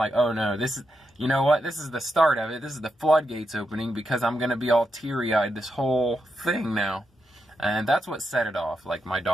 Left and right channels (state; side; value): normal; both; correlation 0.85